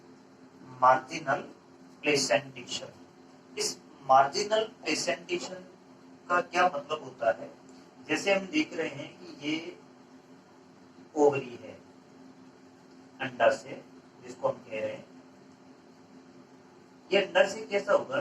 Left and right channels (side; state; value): both; identical; correlation 1.00